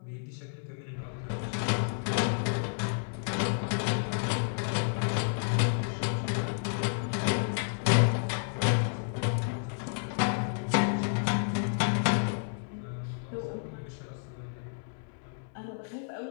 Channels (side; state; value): right; silent; 56 dB below the other